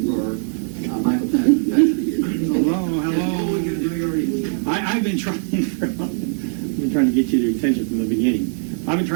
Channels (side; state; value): left; silent; digital silence